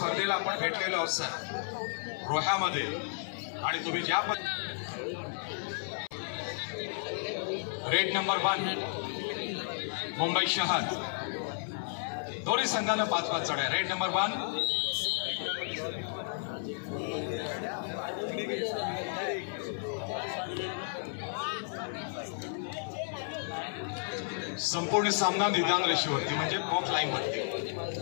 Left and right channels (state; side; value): silent; right; 56 dB below the other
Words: आपण भेटलेलो आहोत सर रोह्यामध्ये, आणि तुम्ही ज्या रेड नंबर 1 मुंबई शहर, दोन्ही संघानं 5-5 चढ्या. रेड नंबर 1 संपूर्ण सामना निदान रेषेवरती म्हणजे बॉक्स लाईन वरती.